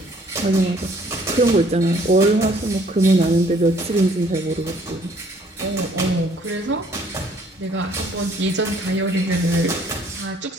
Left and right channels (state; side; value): normal; both; correlation 0.61